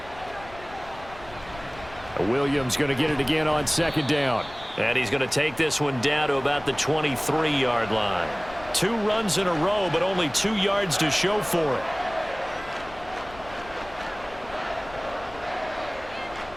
Williams going to get it again on 2nd down. And he's going to take this one down to about the 23-yard line. 2 runs in a row, but only 2 yards to show for it.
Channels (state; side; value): noise; left; rumble, 19 dB below the sound